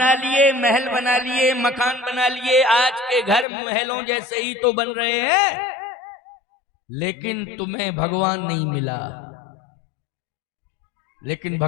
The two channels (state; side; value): drops out; right; at 3.5 s